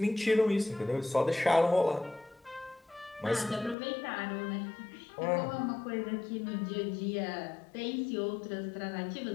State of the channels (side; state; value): right; drops out; at 3.8 s